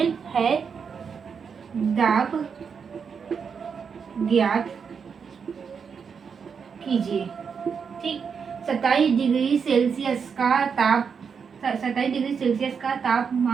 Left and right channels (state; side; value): quieter; left; 6.3 dB